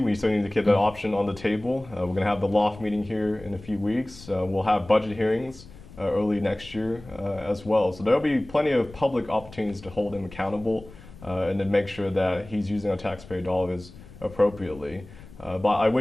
still need to keep that option on the table. We're going to have the loft meeting here in a few weeks. We'll have budget hearings early next year as well. So there will be plenty of public opportunities to hold him accountable and to make sure that he's using our taxpayer dollars appropriately. But I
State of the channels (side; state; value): left; noise; rumble, 19 dB below the sound